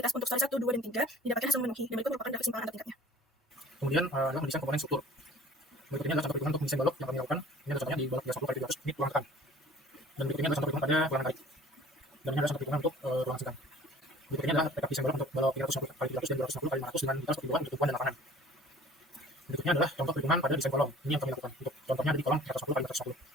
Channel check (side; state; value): both; normal; correlation 0.48